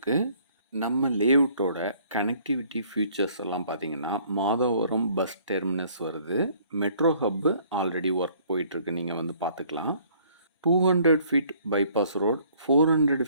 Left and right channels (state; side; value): inverted; both; correlation -0.59